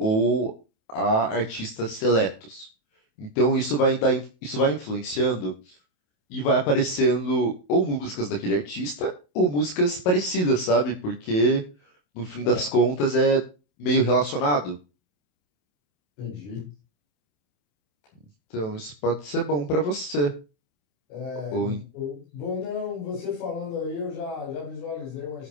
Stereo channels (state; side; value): late; right; 27 ms